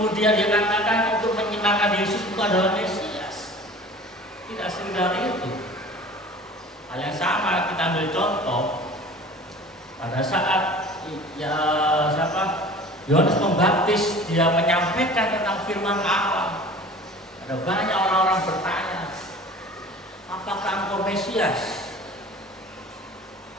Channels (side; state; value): both; normal; correlation 0.43